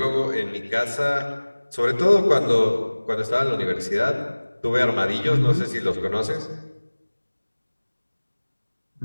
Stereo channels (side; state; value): both; inverted; correlation -1.00